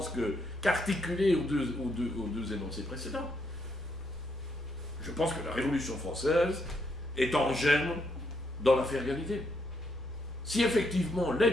qu'articulé aux deux énoncés précédents. Je pense que la Révolution française est en germe dans l'affaire égalité. Si effectivement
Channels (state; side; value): noise; right; rumble, 21 dB below the sound